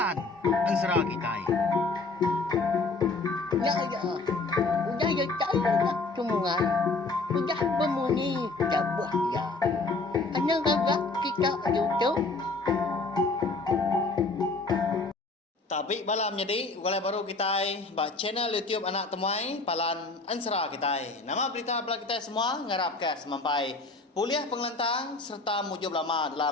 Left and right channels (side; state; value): right; quieter; 3.5 dB